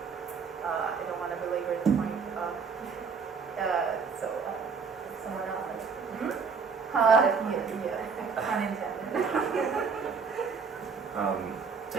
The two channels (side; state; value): left; quieter; 5.5 dB